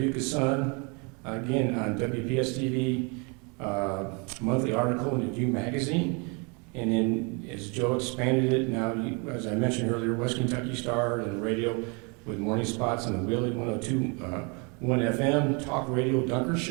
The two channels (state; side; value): quieter; left; 32.6 dB